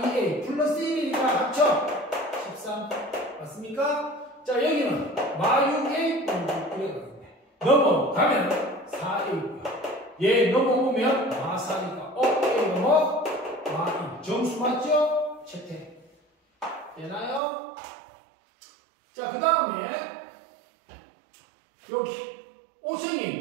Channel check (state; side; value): drops out; left; at 17.4 s